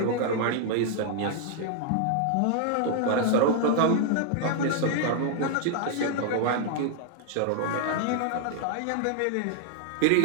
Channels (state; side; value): different; both; correlation 0.00